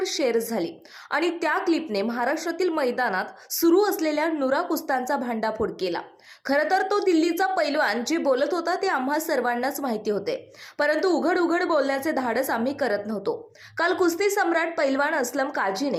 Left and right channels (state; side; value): identical; both; correlation 1.00